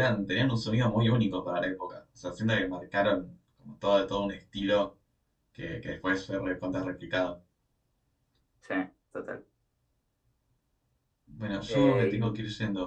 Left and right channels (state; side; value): identical; both; correlation 1.00